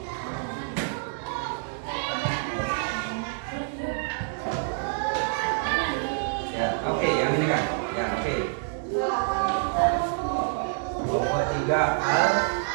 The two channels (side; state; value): left; silent; digital silence